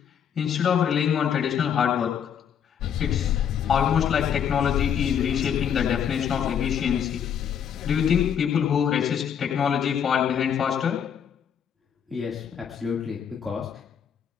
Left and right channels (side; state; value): right; quieter; 8.3 dB